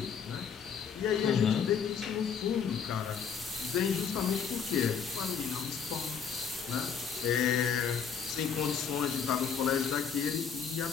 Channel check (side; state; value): right; quieter; 6.9 dB